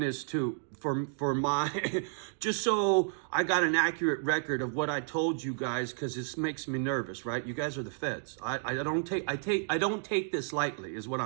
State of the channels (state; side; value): silent; left; digital silence